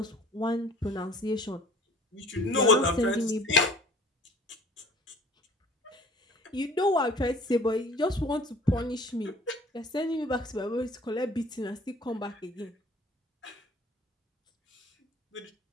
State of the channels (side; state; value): both; normal; correlation 0.49